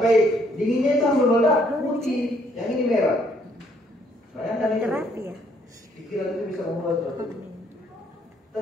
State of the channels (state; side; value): normal; both; correlation 0.67